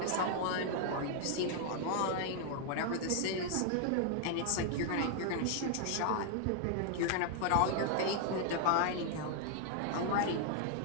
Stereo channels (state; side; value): different; both; correlation 0.00